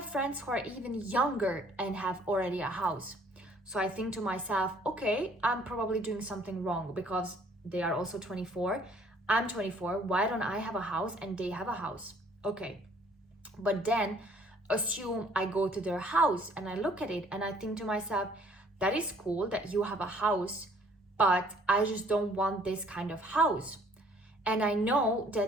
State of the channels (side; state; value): both; normal; correlation 0.59